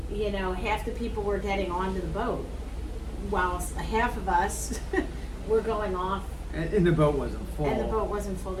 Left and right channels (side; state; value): both; identical; correlation 1.00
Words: you know, half the people were getting onto the boat, while half of us were going off, And the boat wasn't full. and the boat wasn't full